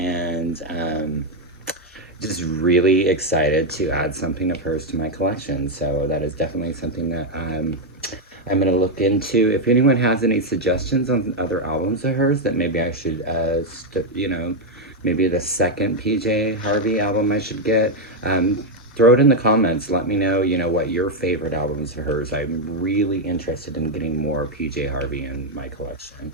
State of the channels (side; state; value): both; normal; correlation 0.02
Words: just really excited to add something of hers to my collection. So that is definitely something that I'm going to look into. If anyone has any suggestions on other albums of hers that maybe I should, maybe the second PJ Harvey album I should get, throw it in the comments. Let me know, what your favorite albums of hers. I'm really interested in getting more PJ Harvey in my collection.